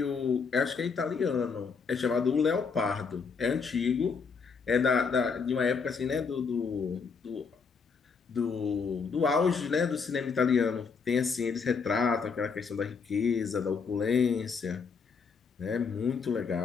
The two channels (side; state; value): right; quieter; 5.4 dB